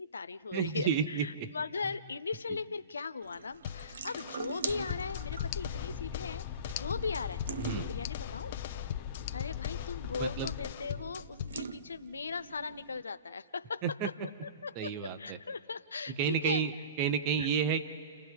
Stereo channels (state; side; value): inverted; both; correlation -0.39